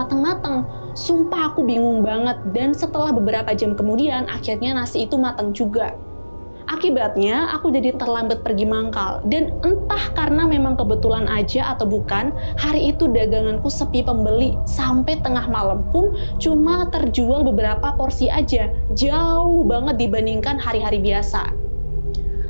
Sumpah aku bingung banget dan setelah beberapa jam kemudian akhirnya nasi itu mateng juga. Akibatnya, aku jadi terlambat pergi mangkal. Dan entah karena memang kebetulan aja atau bukan, hari itu daganganku sepi pembeli. Sampai tengah malam pun cuma terjual beberapa porsi aja. Jauh banget dibandingkan hari-hari biasa.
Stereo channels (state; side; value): inverted; both; correlation -1.00